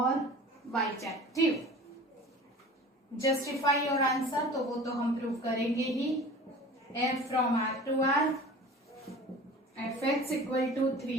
bijective. Justify your answer, तो वो तो हम prove करेंगे ही. F from R to R, fx equal to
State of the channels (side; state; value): both; normal; correlation 0.41